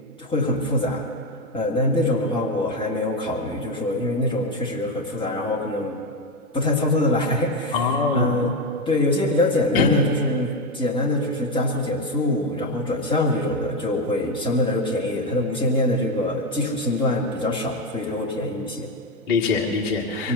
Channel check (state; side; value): normal; both; correlation 0.12